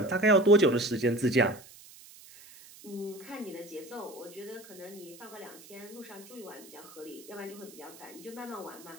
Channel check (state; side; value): noise; right; hiss, 20 dB below the sound